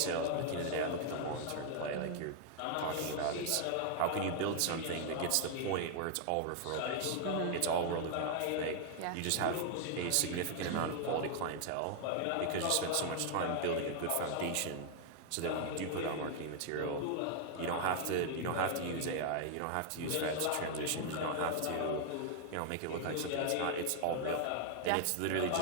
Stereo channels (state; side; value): different; both; correlation 0.00